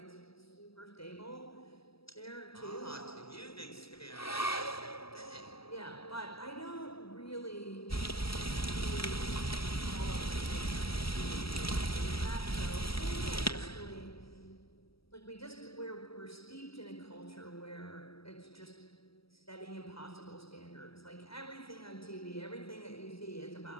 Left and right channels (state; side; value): late; right; 0.76 ms